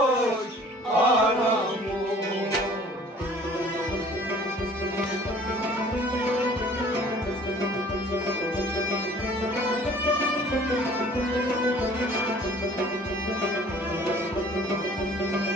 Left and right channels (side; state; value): both; normal; correlation 0.52